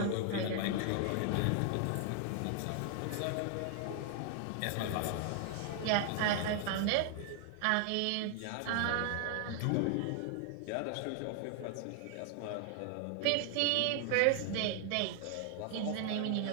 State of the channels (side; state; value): both; different; correlation 0.00